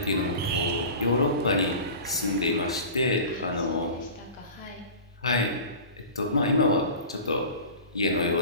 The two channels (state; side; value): inverted; both; correlation -0.36